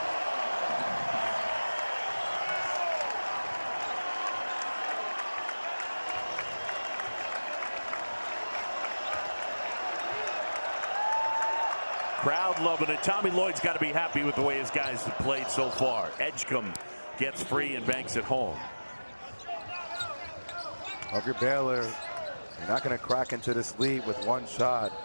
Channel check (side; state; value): both; inverted; correlation -1.00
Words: Crowd loving it. Tommy Lloyd's got to be happy with the way his guys have played so far. Edgecombe gets free and banks it home. If you're Baylor, you're not going to crack into this lead with one shot.